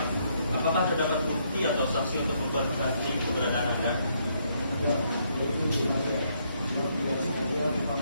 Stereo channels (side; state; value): both; inverted; correlation -0.73